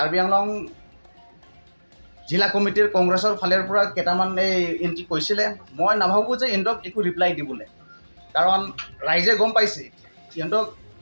আংলং জিলা কমিটিৰ কংগ্ৰেছৰ ফালৰ পৰা কেইটামান এই এণ্ট্ৰি কৈছিলে। মই নাভাবোঁ যে ইহঁতক একো ৰিপ্লাই দিবলৈ, কাৰণ ৰাইজে গম পাইছে ইহঁতক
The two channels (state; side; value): inverted; both; correlation -1.00